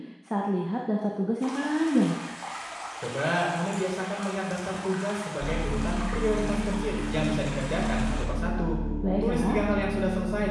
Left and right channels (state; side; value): identical; both; correlation 1.00